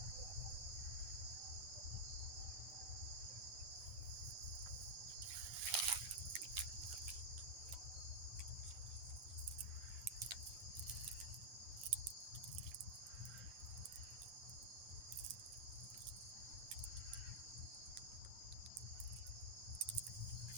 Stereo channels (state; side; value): late; left; 9.3 ms